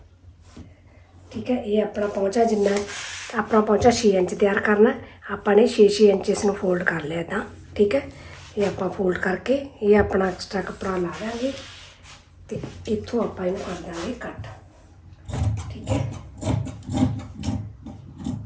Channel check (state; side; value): identical; both; correlation 1.00